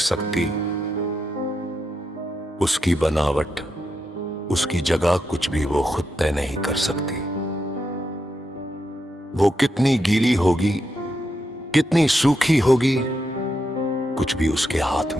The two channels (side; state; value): both; normal; correlation 0.84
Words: उसकी बनावट, उसकी जगह कुछ भी वो खुद तय नहीं कर सकती। वो कितनी गीली होगी, कितनी सूखी होगी, कुछ भी उसके हाथ